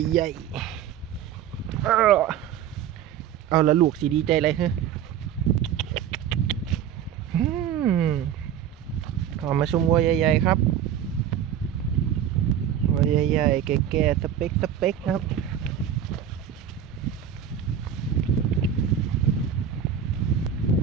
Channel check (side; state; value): left; quieter; 9.3 dB